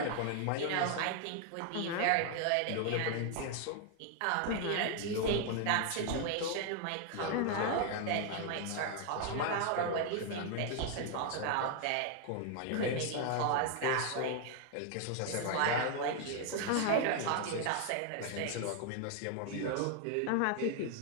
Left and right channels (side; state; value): both; different; correlation 0.00